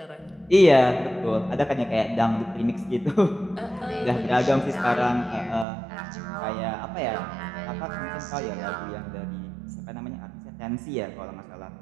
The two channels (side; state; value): left; drops out; at 5.7 s